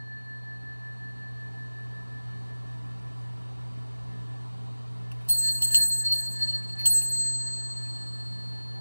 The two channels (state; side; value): inverted; both; correlation -1.00